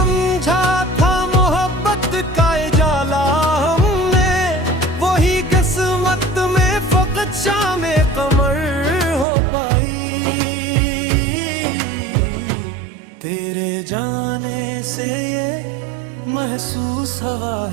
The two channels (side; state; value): left; drops out; at 9.2 s